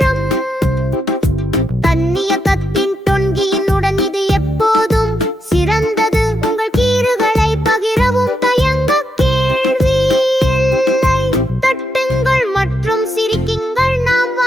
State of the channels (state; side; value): normal; both; correlation 0.81